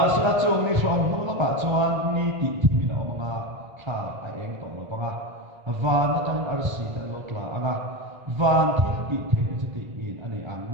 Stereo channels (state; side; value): late; left; 1.3 ms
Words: sa chung ni shom nu la ka chuan ni ti thi na ma tha ai eng to lo panga van na tan ar si tan lo tla anga van thi ti the ti in ani ang